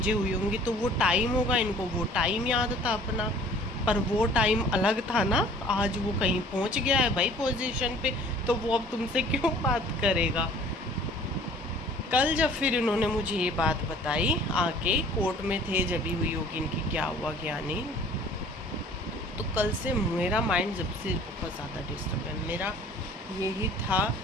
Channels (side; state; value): both; normal; correlation 0.50